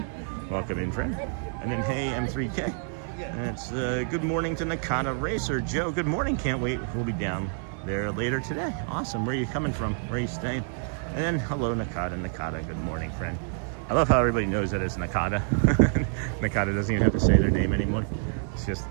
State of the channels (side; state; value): left; silent; 60 dB below the other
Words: Welcome in, friend. And then, hey, M3K. And it's good morning to Nakata Racer. Joe, good morning. Can't wait. We'll be down there later today. Awesome. Where are you coming from? Where are you staying? And then, hello, Nakata. Nakata, good morning, friend. I love how everybody knows that it's Nakata. Nakata doesn't even have to say their name anymore. It's just